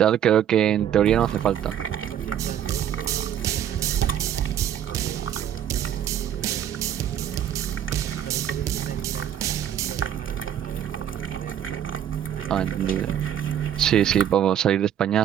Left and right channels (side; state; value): left; quieter; 10.0 dB